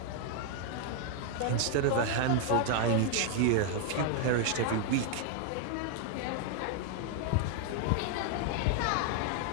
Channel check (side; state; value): both; different; correlation 0.00